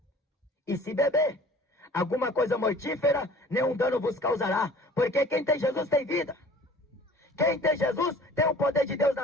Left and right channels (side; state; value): both; normal; correlation 0.48